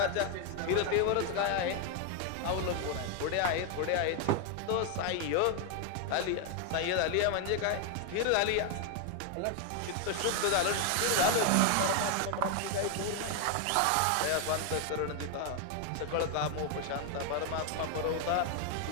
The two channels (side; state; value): both; different; correlation 0.01